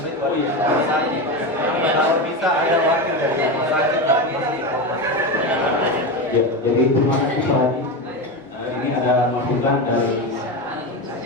itu di rumah sakit. Kalau bisa ada wakil dari rumah sakit tapi masih formatur. Ya, jadi terima kasih Pak Haji. Ini ada masukan dari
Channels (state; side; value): normal; both; correlation 0.18